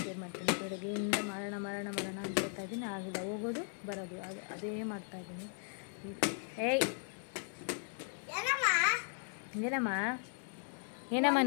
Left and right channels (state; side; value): silent; right; 53 dB below the other